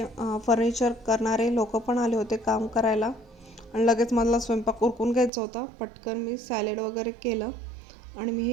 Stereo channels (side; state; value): left; drops out; at 5.3 s